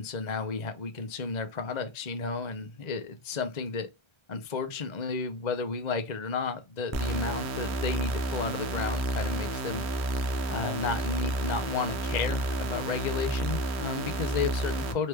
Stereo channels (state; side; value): late; right; 1.3 ms